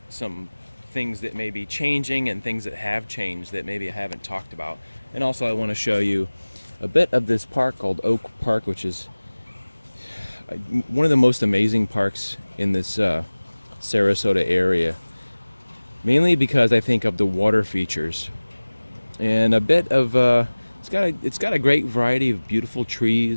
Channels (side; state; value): both; inverted; correlation -1.00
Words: some things that may be changing and things that have changed that maybe I haven't talked about. And also, I want to show you a bit of this park called Oak Park, which is one of the most amazing parks in this Sarasota area. Mainly because I think of the water features. And a bit of it's got a great variety of beautiful